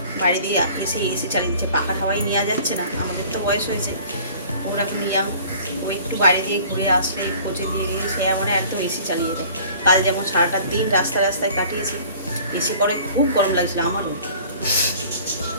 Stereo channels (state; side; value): inverted; both; correlation -0.49